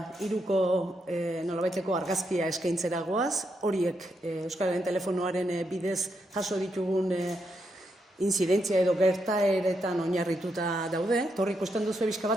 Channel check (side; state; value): both; normal; correlation 0.81